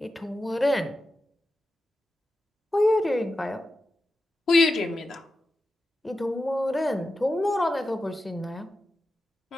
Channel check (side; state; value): both; normal; correlation 0.91